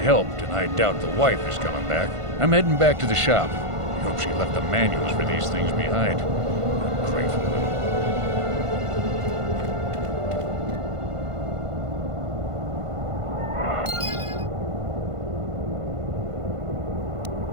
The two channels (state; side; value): late; left; 1.5 ms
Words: helped, and I doubt the wife is coming back. I'm heading back to the shop. I hope she left the manuals for these things behind. Grateful little.